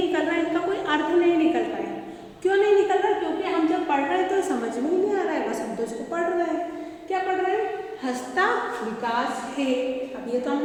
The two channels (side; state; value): both; identical; correlation 1.00